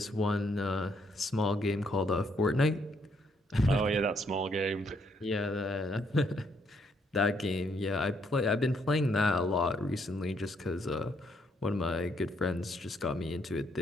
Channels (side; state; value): both; normal; correlation 0.72